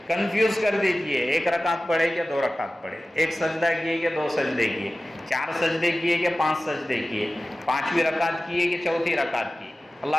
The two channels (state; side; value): normal; both; correlation 0.96